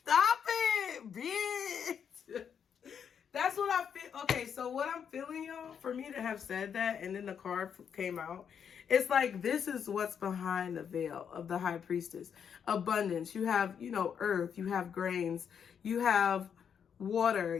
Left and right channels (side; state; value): right; quieter; 7.6 dB